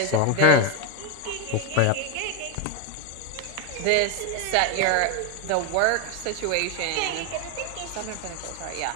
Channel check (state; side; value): different; both; correlation 0.01